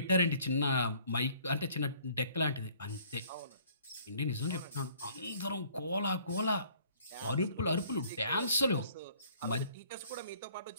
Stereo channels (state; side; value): inverted; both; correlation -0.58